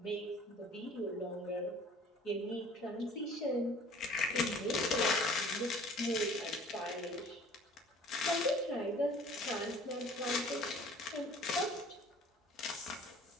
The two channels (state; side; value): normal; both; correlation 0.50